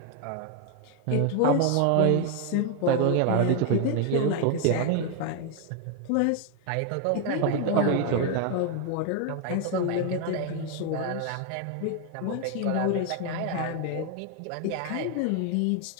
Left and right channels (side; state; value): both; different; correlation 0.01